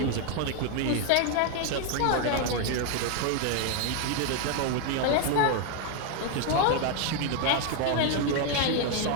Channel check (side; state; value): both; different; correlation 0.01